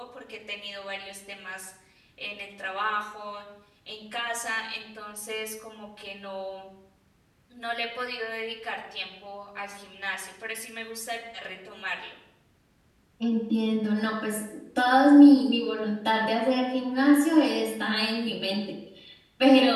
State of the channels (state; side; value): identical; both; correlation 1.00